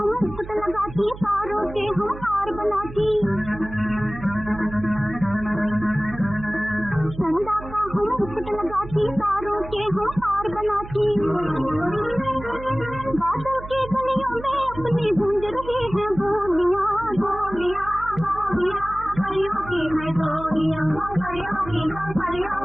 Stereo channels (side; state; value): right; noise; hum, 13 dB below the sound